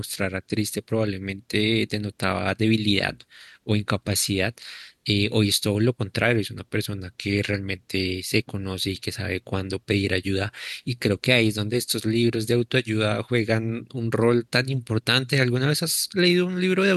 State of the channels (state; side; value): identical; both; correlation 1.00